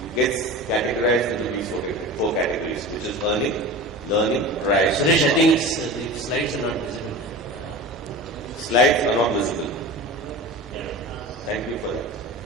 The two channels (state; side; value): normal; both; correlation 0.32